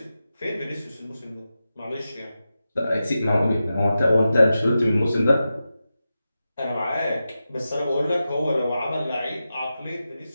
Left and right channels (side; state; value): both; inverted; correlation -0.92